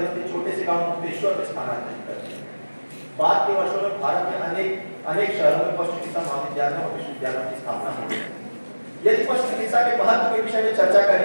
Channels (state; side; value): inverted; both; correlation -1.00